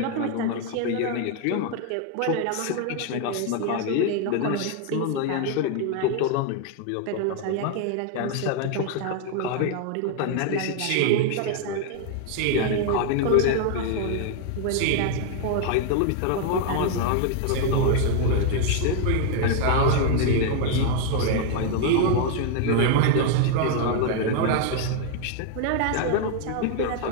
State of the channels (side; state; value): both; different; correlation 0.00